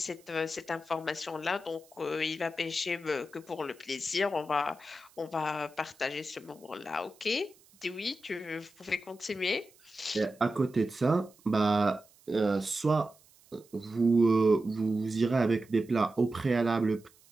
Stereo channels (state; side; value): noise; right; hiss, 29 dB below the sound